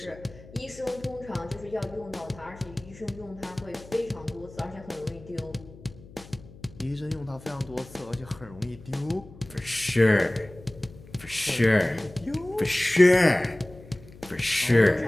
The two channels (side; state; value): left; noise; hum, 20 dB below the sound